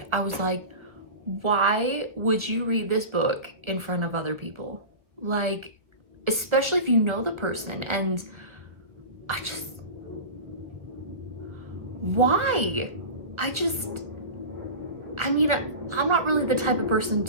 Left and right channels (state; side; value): late; left; 1.0 ms